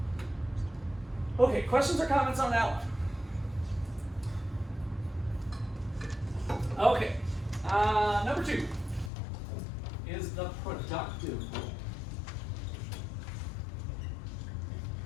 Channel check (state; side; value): drops out; right; at 9.1 s